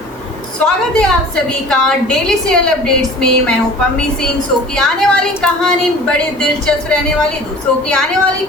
स्वागत है आप सभी का डेली सीरियल अपडेट्स में। मैं हूं पम्मी सिंह। शो की आने वाली कहानी बड़ी दिलचस्प रहने वाली। शो की आने वाली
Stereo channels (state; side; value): normal; both; correlation 0.43